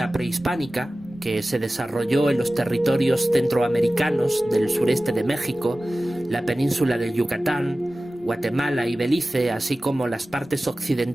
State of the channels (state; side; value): normal; both; correlation 0.96